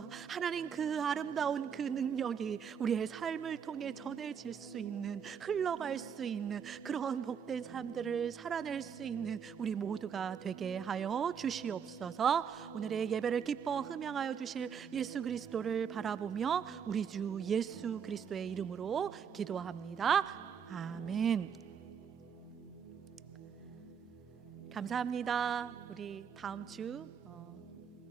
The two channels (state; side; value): quieter; left; 7.4 dB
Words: 하나님 그 아름다운 그 능력이 우리의 삶을 통해 전해질 수 있는, 흘러갈 수 있는 그런 복된 삶들을 살아낼 수 있는 우리 모두가 되게 하여 주시옵소서. 오늘의 예배를 기뻐 흠양하여 주실 예수 그리스도를 바라보며 우리 주 예수 그리스도의 이름으로 기도합니다. 아멘. 감사합니다. 우리 다음 주